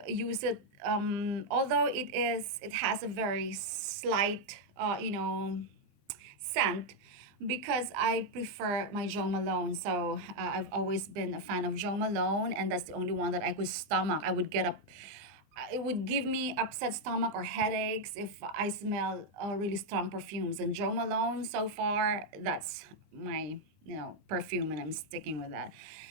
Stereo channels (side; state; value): left; late; 20 ms